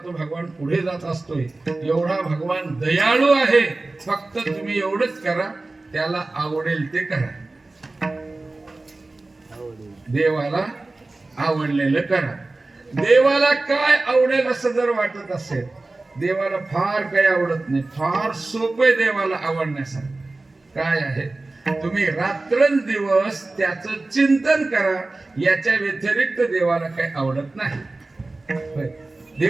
भगवान पुढे जात असतोय. एवढा भगवान दयाळू आहे. फक्त तुम्ही एवढंच करा, त्याला आवडेल ते करा. देवाला आवडलेलं करा. देवाला काय आवडेल असं जर वाटत असेल, देवाला फार काही आवडत नाही. फार सोपं देवाला आवडण्यासारखं काय आहे? तुम्ही रात्रंदिवस त्याचं चिंतन करा. याच्या व्यतिरिक्त देवाला काही आवडत नाही.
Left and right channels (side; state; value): left; quieter; 3.2 dB